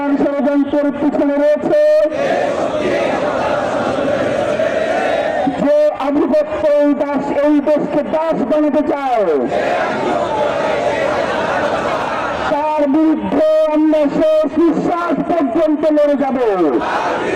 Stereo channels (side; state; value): both; identical; correlation 1.00